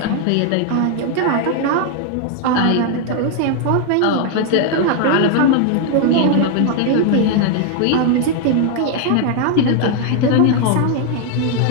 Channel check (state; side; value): different; both; correlation 0.00